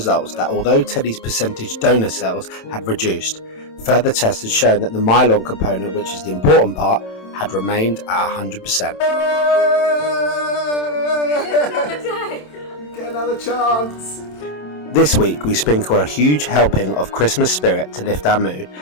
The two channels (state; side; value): late; right; 27 ms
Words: that although Teddy's percentage donor cells had reduced, further tests had shown that the myelin component, which is the important part, had remained at 100%. Get another chance! This week we sprinkle a huge helping of Christmas spirit to lift our mood